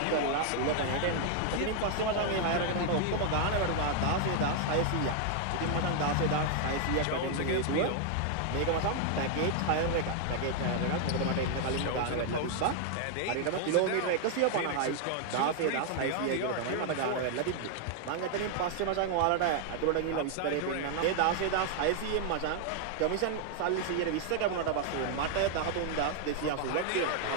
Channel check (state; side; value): different; both; correlation 0.00